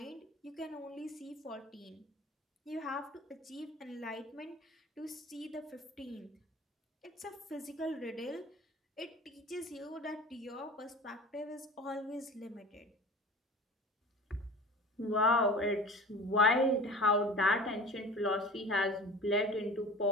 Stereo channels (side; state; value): both; normal; correlation 0.39